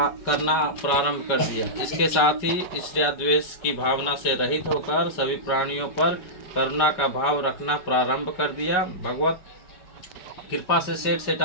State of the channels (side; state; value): right; late; 4.8 ms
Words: करना प्रारंभ कर दिया। इसके साथ ही ईर्ष्या द्वेष की भावना से रहित होकर सभी प्राणियों पर करुणा का भाव रखना प्रारंभ कर दिया। भगवत कृपा से सेठ